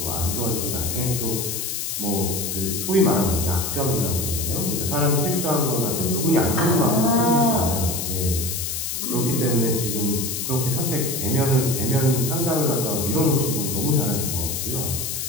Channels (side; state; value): left; noise; hiss, 3 dB below the sound